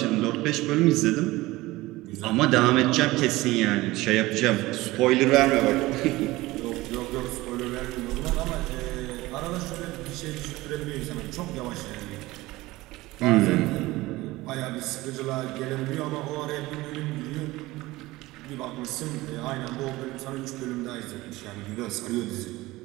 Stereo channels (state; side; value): quieter; left; 19.3 dB